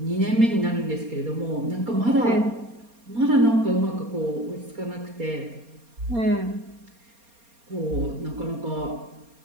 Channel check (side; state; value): left; late; 4.3 ms